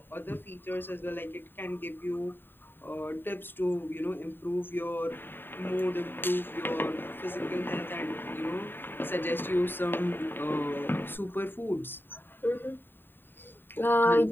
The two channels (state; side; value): late; right; 0.096 ms